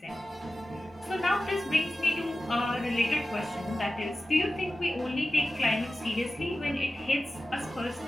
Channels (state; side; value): normal; both; correlation 0.94